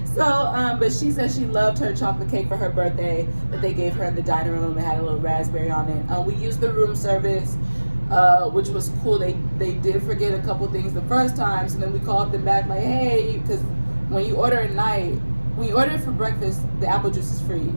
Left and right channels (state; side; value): inverted; both; correlation -1.00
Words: So, but she said she loved her chocolate cake for her birthday that they gave her in the dining room. It had a little raspberry on it. We used the room service, which was cool. They did forget a couple things the first time, so then we called them back like, hey, because when you order at night, when you order it for breakfast, the apple juice is free.